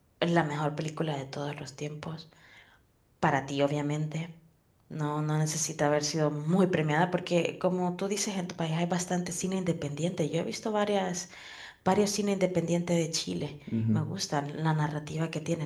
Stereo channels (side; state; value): both; identical; correlation 1.00